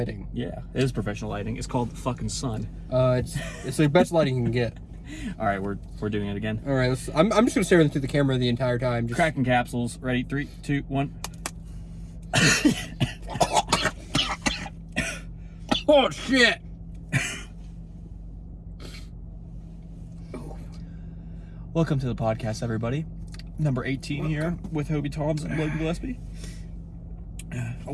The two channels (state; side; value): identical; both; correlation 1.00